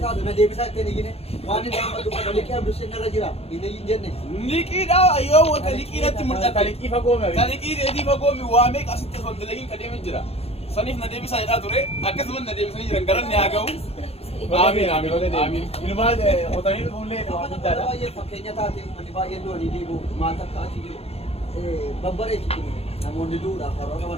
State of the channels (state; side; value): late; right; 0.29 ms